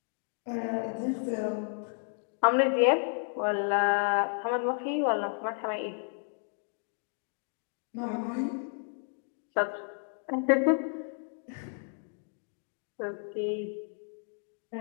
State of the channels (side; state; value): right; silent; 56 dB below the other